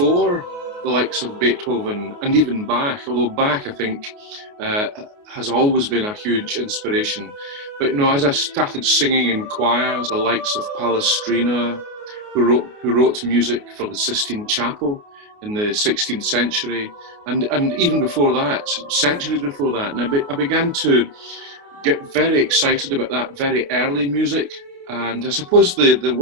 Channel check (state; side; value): late; left; 29 ms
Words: the likes of Beethoven and even Bach, although Bach, I think, has always been a huge inspiration. But as I started singing in choirs, the likes of Palestrina, who wrote music for the Sistine Chapel in the 16th century, and even before that, centuries before that, and I began to get very excited about that very early music. And I suppose the